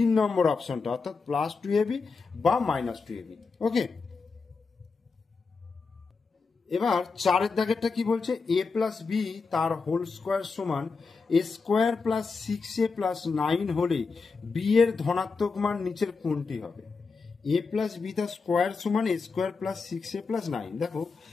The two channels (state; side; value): quieter; right; 4.6 dB